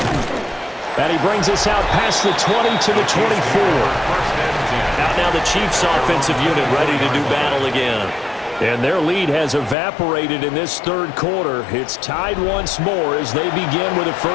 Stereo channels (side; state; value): right; drops out; at 9.8 s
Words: And he brings us out past the 20 to the 24. Out now the Chiefs offensive unit ready to do battle again. And their lead has evaporated in this third quarter. It's tied once more as they begin with a